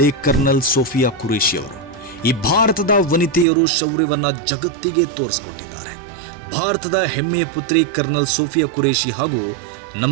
ಕರ್ನಲ್ ಸೋಫಿಯಾ ಖುರೇಷಿ ಅವರು. ಈ ಭಾರತದ ವನಿತೆಯರು ಶೌರ್ಯವನ್ನ ಜಗತ್ತಿಗೆ ತೋರಿಸಿಕೊಟ್ಟಿದ್ದಾರೆ. ಭಾರತದ ಹೆಮ್ಮೆಯ ಪುತ್ರಿ ಕರ್ನಲ್ ಸೋಫಿಯಾ ಖುರೇಷಿ ಹಾಗೂ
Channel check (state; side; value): drops out; left; at 3.5 s